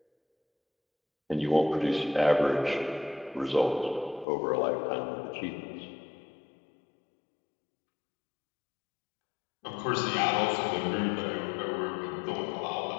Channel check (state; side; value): drops out; right; at 4.2 s